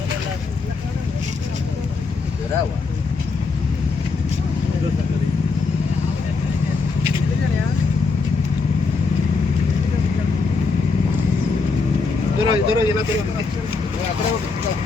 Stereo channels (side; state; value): right; quieter; 4.3 dB